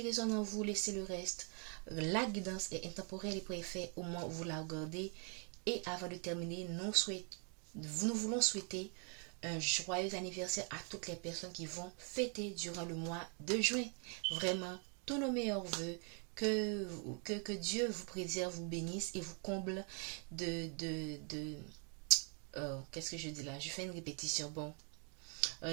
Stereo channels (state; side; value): quieter; left; 39.3 dB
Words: résonne en vous, laissez le reste. La guidance est intemporelle et préfet au moment où vous la regardez. Et avant de terminer, nous voulons souhaiter un joyeux anniversaire à toutes les personnes qui vont fêter durant le mois de juin. Vraiment, tous nos meilleurs voeux. Que Dieu vous préserve, vous bénisse et vous comble qu'est-ce que je dis là? Je fais une répétition. Bon,